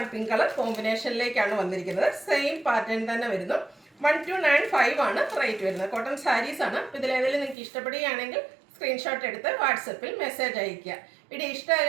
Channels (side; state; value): left; drops out; at 7.6 s